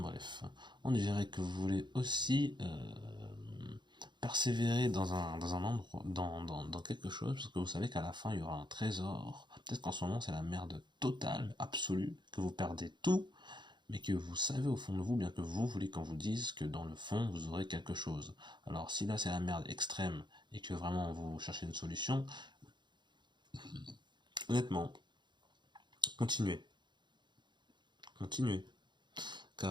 on dirait que vous voulez aussi persévérer dans un endroit, dans quelque chose, parce que vous savez qu'à la fin il y aura un trésor. Peut-être qu'en ce moment c'est la merde totale, absolue, que vous perdez tout, mais que vous savez au fond de vous, bien que vous voulez qu'on vous dise que dans le fond vous aurez quelque chose. Alors si là c'est la merde extrême et que vraiment vous cherchez une solution, honnêtement, continuez. Continuez.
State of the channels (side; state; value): left; late; 0.22 ms